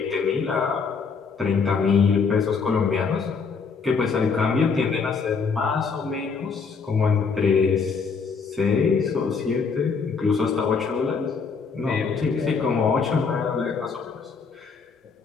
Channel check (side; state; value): right; quieter; 5.3 dB